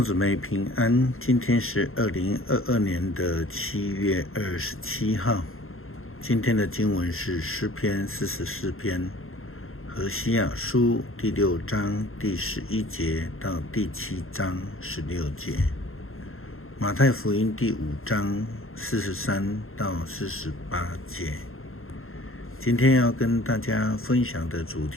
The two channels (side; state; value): right; late; 0.61 ms